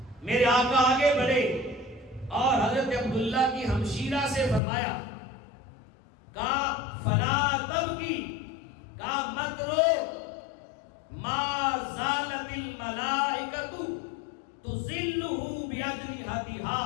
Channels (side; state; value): right; drops out; at 4.6 s